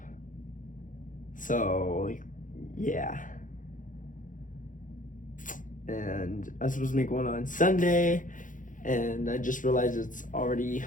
So yeah. And I was supposed to make one on Sunday, and I just realized it's already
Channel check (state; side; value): late; right; 0.38 ms